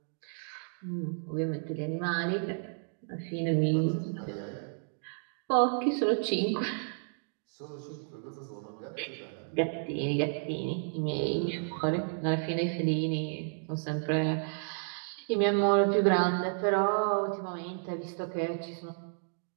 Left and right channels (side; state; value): left; silent; digital silence